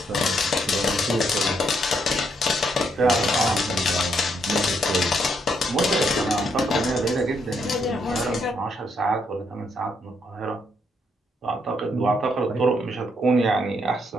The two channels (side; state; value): both; normal; correlation 0.75